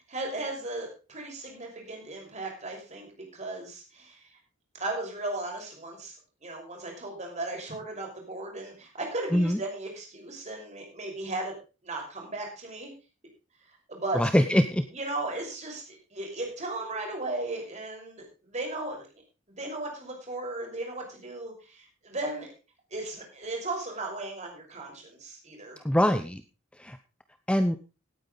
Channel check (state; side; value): normal; both; correlation 0.61